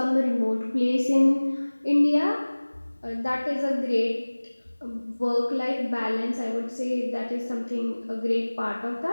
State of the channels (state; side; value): inverted; both; correlation -1.00